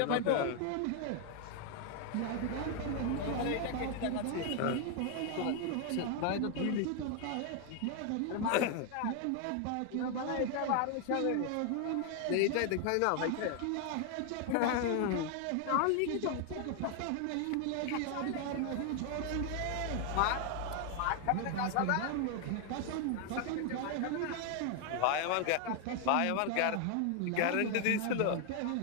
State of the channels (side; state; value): both; different; correlation 0.00